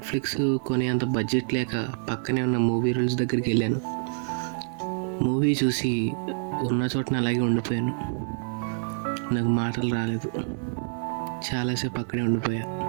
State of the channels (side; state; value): left; silent; digital silence